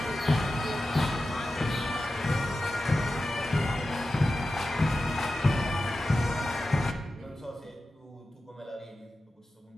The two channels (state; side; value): normal; both; correlation 0.93